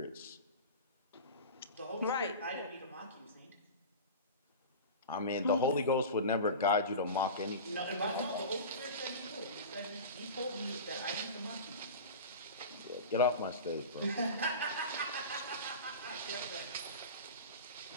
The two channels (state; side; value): inverted; both; correlation -0.31